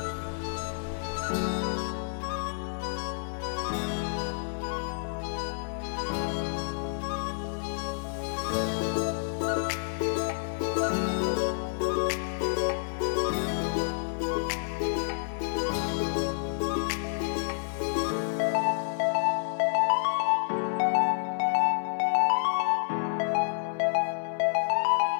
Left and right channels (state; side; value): silent; right; digital silence